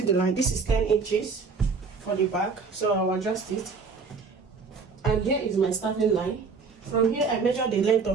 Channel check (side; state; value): left; quieter; 4.9 dB